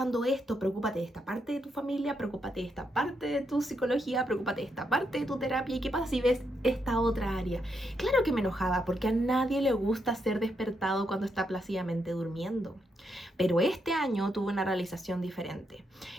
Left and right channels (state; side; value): normal; both; correlation 0.80